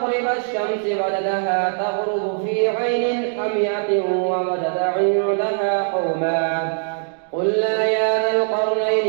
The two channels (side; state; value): left; silent; digital silence